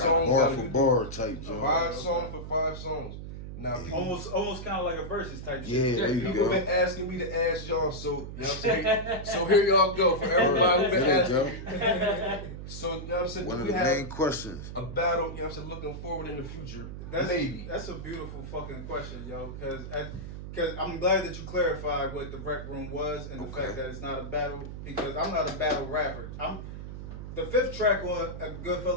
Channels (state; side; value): noise; right; hum, 9 dB below the sound